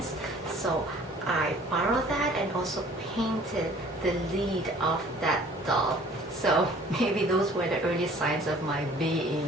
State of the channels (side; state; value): both; normal; correlation 0.52